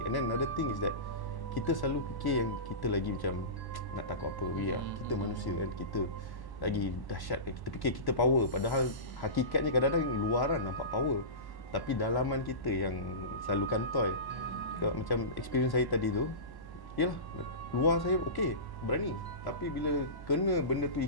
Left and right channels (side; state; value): right; late; 1.1 ms